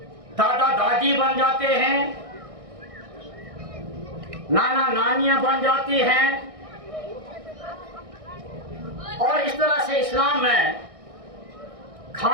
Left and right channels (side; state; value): left; late; 1.6 ms